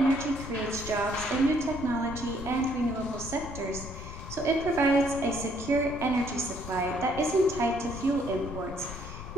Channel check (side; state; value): left; noise; rumble, 10 dB below the sound